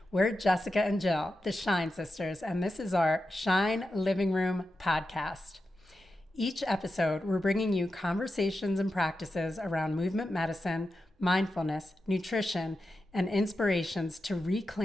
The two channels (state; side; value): normal; both; correlation 0.90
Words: We're Jessica and Jill, the Shine Sisters, and this is our Shine Living Room podcast. Each episode, we're bringing you conversations and practices around movement medicine, mindfulness, nutrition, and inspirations to